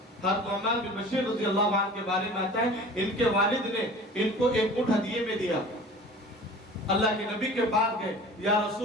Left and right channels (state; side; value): normal; both; correlation 0.42